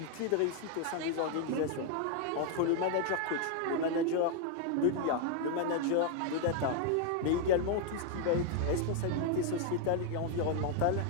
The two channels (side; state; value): both; different; correlation 0.00